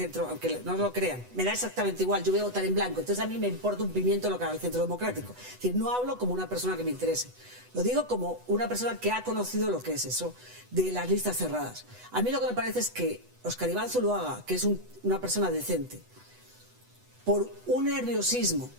aunque no lo crean, me da exactamente igual, yo voy a votar en blanco, entonces a mí me importa un pimiento lo que haga el Centro Democrático. Es decir, no hablo como una persona que me interese, lo digo como una persona que ha conocido lo que es eso de las listas cerradas. A mí lo que me parece es que Oscar Iván Zuluaga, que es una persona decente, por un nerviosismo,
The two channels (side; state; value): left; late; 8.1 ms